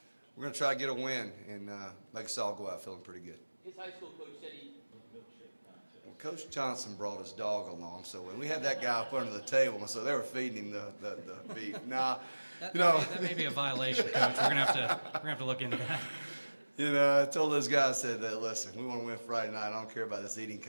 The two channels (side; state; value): both; inverted; correlation -1.00